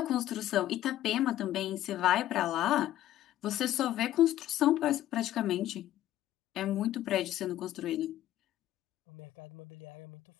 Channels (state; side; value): quieter; right; 13.4 dB